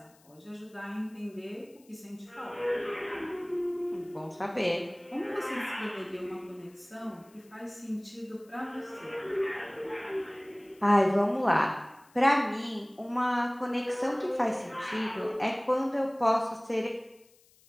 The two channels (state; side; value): noise; left; hiss, 30 dB below the sound